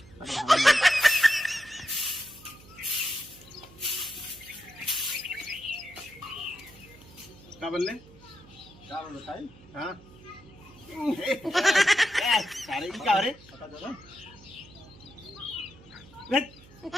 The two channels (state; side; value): noise; right; hum, 22 dB below the sound